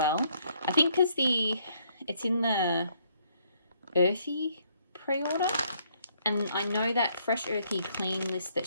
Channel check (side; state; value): both; inverted; correlation -0.68